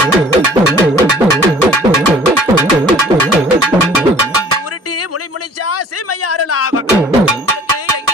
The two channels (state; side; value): normal; both; correlation 0.52